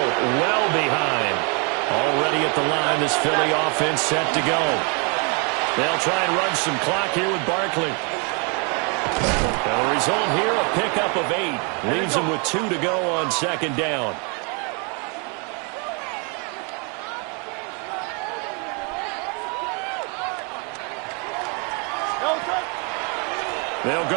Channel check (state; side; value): quieter; left; 35.0 dB